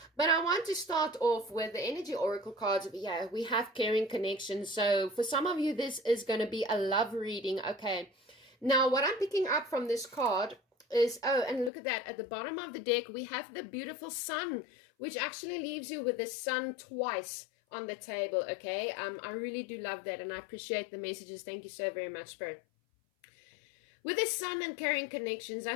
But I want to start off with the energy oracle cards. Yeah, we have caring connection. So for some of you, this is going to be a love reading. Okay. Now, what I'm picking up from this card is, oh, and look at that. At the bottom of the deck, we have the beautiful sun, which actually leaves you with the sun twice on the table. Okay, I really do love that, and I appreciate the messages. Thank you so very much, Spirit. With the sun and carrying connections, I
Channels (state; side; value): drops out; right; at 11.7 s